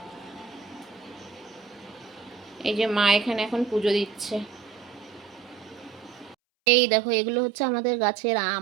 এই যে মা এখানে এখন পুজো দিচ্ছে। এই দেখো এগুলো হচ্ছে আমাদের গাছের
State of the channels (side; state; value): left; drops out; at 6.4 s